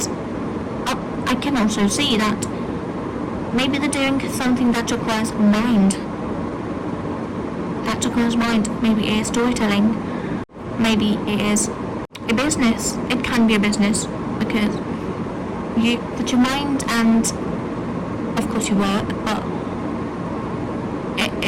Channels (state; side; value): identical; both; correlation 1.00